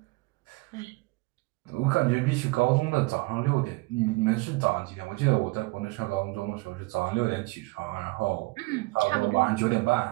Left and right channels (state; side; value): quieter; left; 24.3 dB